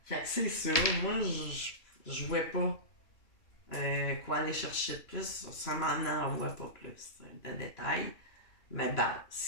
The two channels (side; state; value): right; late; 3.0 ms